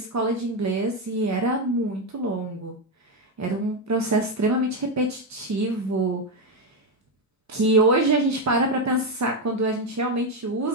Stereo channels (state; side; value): normal; both; correlation 0.07